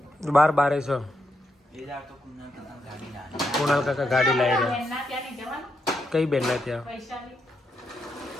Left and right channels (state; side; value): normal; both; correlation 0.82